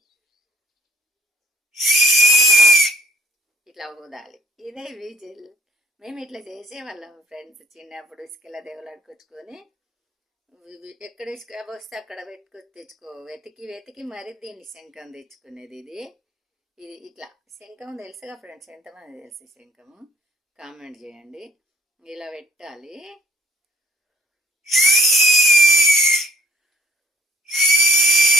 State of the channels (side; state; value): both; normal; correlation 0.59